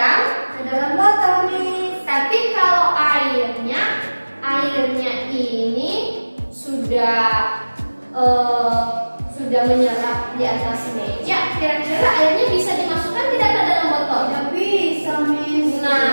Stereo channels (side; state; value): both; inverted; correlation -1.00